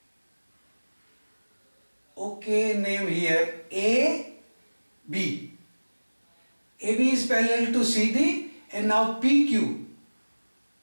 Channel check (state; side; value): inverted; both; correlation -1.00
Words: Okay, name here AB. AB is parallel to CD, and now PQ.